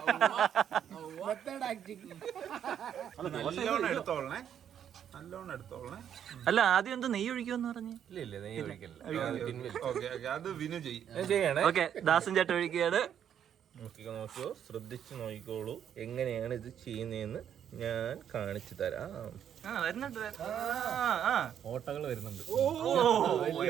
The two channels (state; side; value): quieter; left; 9.2 dB